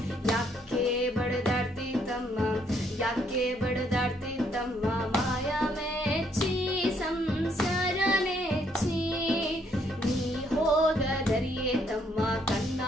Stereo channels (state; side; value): normal; both; correlation 0.70